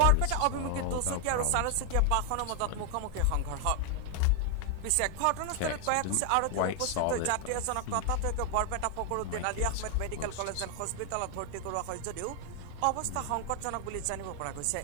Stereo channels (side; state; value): both; different; correlation 0.00